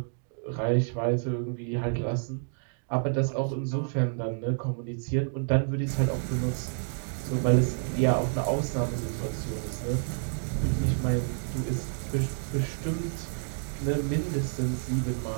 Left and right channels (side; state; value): left; silent; digital silence